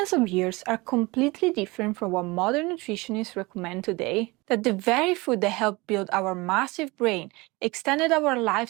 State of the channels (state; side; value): quieter; left; 23.7 dB